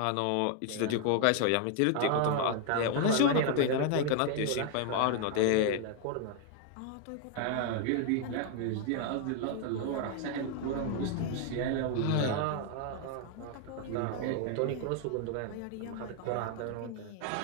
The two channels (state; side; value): different; both; correlation 0.00